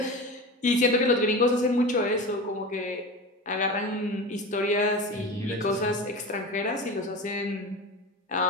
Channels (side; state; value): both; normal; correlation 0.29